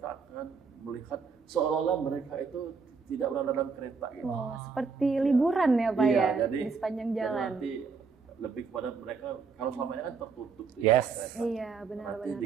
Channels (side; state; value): left; quieter; 5.2 dB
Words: akan melihat seolah-olah mereka itu tidak berada dalam kereta gitu. Seperti liburan ya Pak ya, jadi, di sepanjang jalan. Nanti lebih kepada mereka, kalau selama ini kan tertutup kereta. Iya benar. Nanti